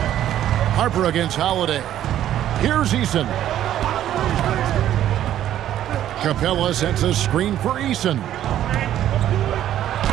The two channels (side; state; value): left; quieter; 11.7 dB